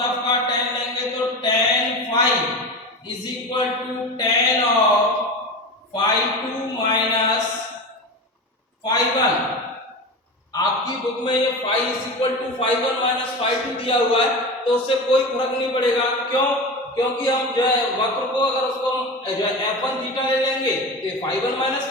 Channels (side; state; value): both; normal; correlation 0.27